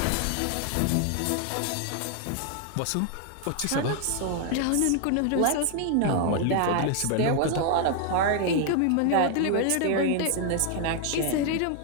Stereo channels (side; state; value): both; different; correlation 0.00